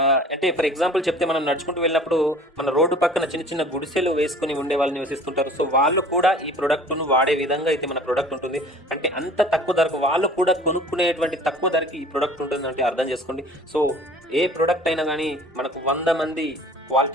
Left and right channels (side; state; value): both; normal; correlation 0.47